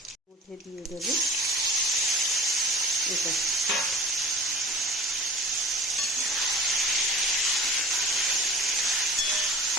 মধ্যে দিয়ে দেব এটা।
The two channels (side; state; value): both; normal; correlation 0.40